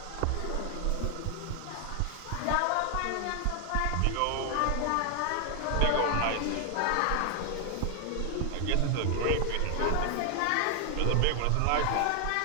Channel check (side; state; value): both; different; correlation 0.00